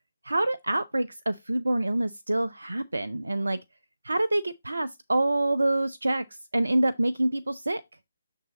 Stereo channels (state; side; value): inverted; both; correlation -0.98